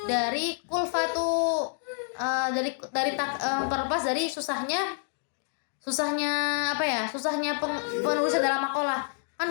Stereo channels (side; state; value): right; silent; digital silence